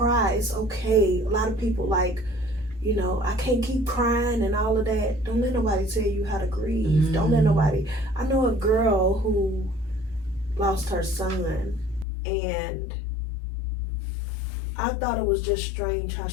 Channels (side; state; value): right; drops out; at 12.1 s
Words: it's okay. A lot of people like, you know, I can't keep crying and all of that. Don't let nobody tell you how to grieve. Don't let nobody. I know a girl who lost her son, and I thought it was just strange how